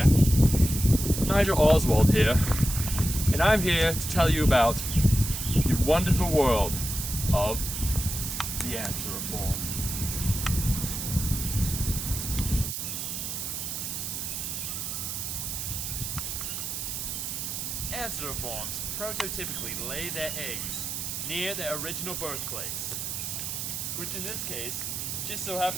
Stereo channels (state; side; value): noise; right; hiss, 4 dB below the sound